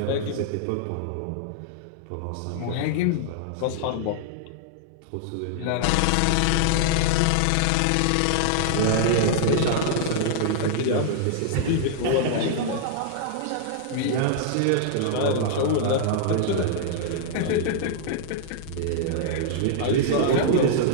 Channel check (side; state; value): both; different; correlation -0.01